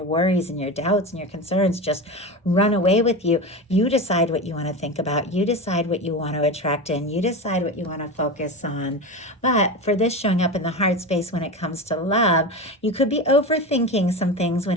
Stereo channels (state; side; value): normal; both; correlation 0.24